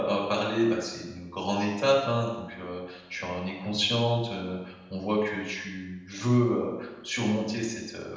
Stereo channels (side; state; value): both; identical; correlation 1.00